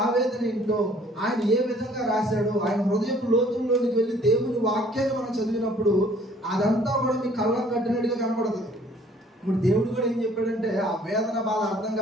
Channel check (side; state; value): both; normal; correlation 0.57